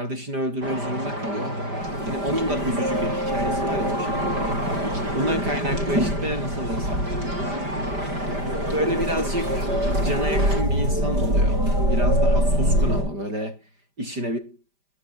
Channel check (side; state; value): left; late; 5.0 ms